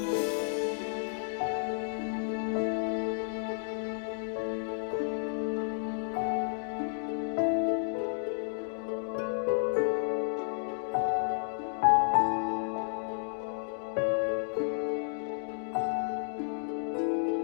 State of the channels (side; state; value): right; silent; digital silence